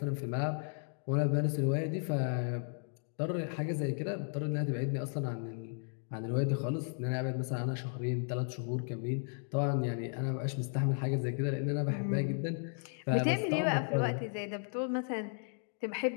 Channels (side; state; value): right; silent; 55 dB below the other